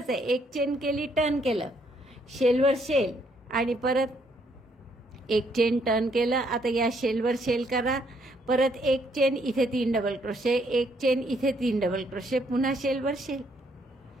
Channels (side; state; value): both; normal; correlation 0.70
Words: आहे. एक चेन केली, टर्न केलं, शेलवर शेल आणि परत एक चेन टर्न केलं. आता या शेलवर शेल करा, परत एक चेन इथे 3 डबल क्रोशे, एक चेन इथे 3 डबल क्रोशे, पुन्हा शेलवर shell,